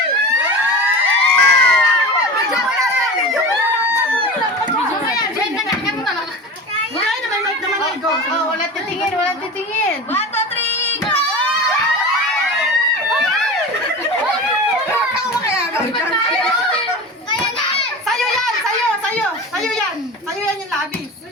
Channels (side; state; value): both; normal; correlation 0.31